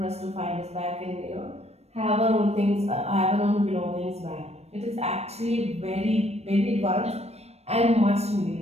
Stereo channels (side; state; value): left; late; 0.31 ms